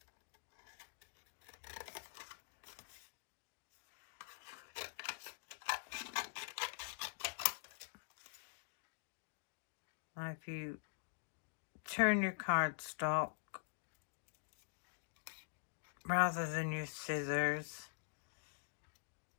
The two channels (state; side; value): silent; right; digital silence